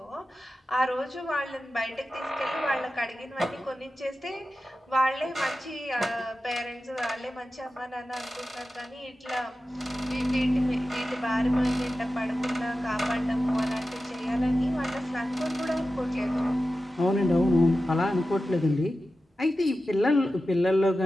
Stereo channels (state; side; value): normal; both; correlation 0.93